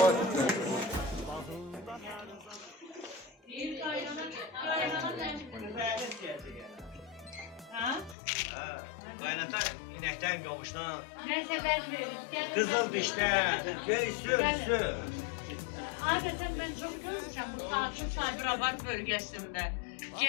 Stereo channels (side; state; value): right; drops out; at 8.2 s